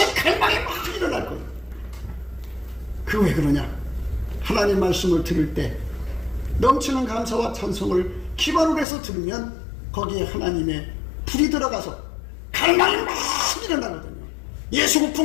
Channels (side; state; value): right; drops out; at 8.8 s